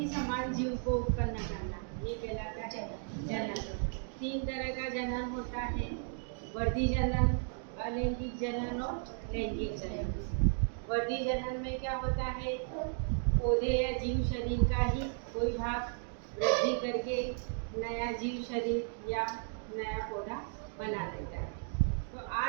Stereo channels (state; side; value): silent; left; 55 dB below the other